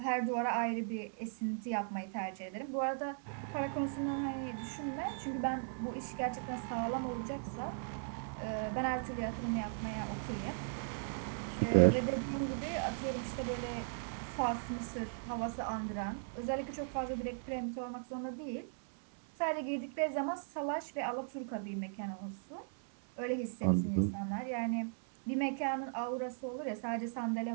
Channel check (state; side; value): silent; left; 53 dB below the other